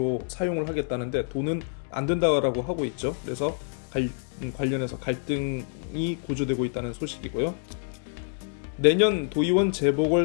사용을 하겠다는데 돈은 안 된다고 하고 있죠. 그래서 관련해서 갈등이 고조되고 있다는 소식이고요. 내년 도의원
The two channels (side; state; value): right; silent; 60 dB below the other